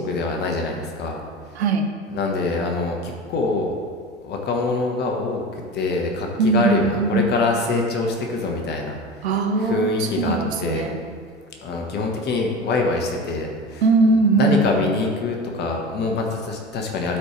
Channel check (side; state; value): both; normal; correlation 0.31